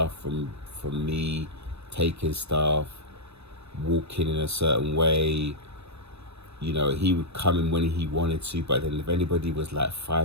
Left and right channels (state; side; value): late; left; 0.80 ms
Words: from me, taking stuff, walking in a certain way. You know, he would come in when he wanted to, but then if anybody was like